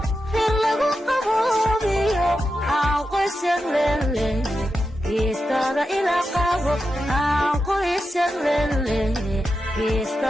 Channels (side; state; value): both; normal; correlation 0.89